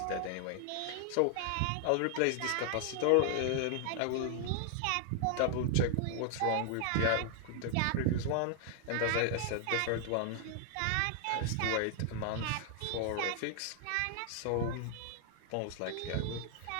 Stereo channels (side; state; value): both; different; correlation 0.00